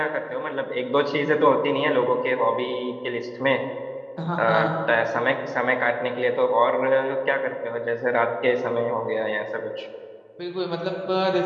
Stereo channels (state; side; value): identical; both; correlation 1.00